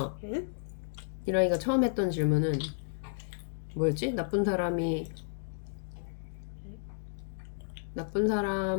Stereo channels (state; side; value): silent; right; digital silence